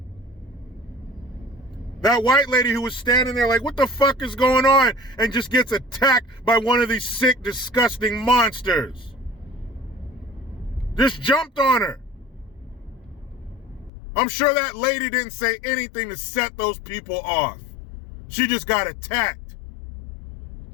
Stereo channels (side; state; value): right; drops out; at 13.9 s